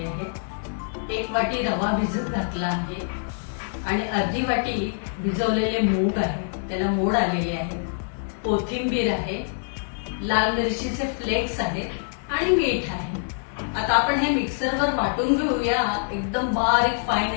आहेत, 1 वाटी रवा भिजत घातला आहे आणि अर्धी वाटी भिजवलेले मूग आहे, त्याला मोड आलेले आहे, कोथिंबीर आहे, लाल मिरचीचे फ्लेक्स आहेत आणि मीठ आहे। आता आपण हे मिक्सरवर वाटून घेऊया, एकदम बारीक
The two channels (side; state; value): right; silent; digital silence